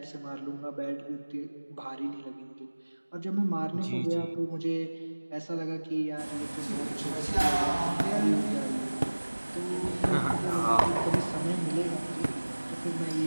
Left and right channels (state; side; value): inverted; both; correlation -1.00